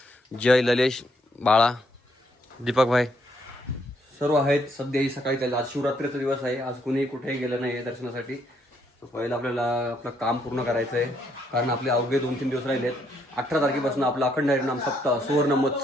जय, ललेश, बाळा, दीपक भाई सर्व आहेत. सध्या सकाळी चाललं. आज शिवरात्रीचा दिवस आहे. आज कुणीही कुठेही गेलं नाही आहे दर्शनासाठी. तर पहिलं आपल्याला आपलं काम पूर्ण करायचं आहे, कारण आपले अवघे 2-3 दिवस राहिलेत. 18 तारखेपासून आपला अखंड हरिनाम सप्ताह, सुवर्ण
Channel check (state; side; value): normal; both; correlation 0.72